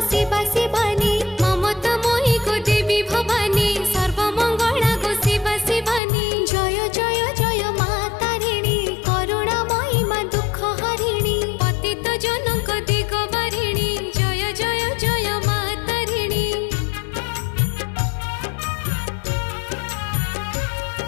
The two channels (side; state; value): right; drops out; at 6.0 s